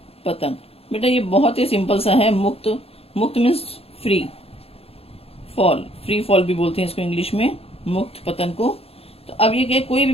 पतन बेटा ये बहुत ही सिंपल सा है। मुक्त, मुक्त means free fall, free fall भी बोलते हैं इसको इंग्लिश में, मुक्त पतन को। तो अब ये क्या, कोई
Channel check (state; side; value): late; right; 0.29 ms